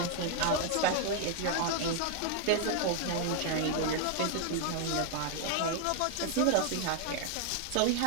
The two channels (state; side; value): different; both; correlation 0.00